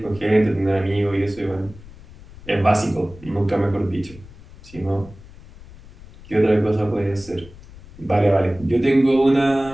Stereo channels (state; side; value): noise; left; rumble, 20 dB below the sound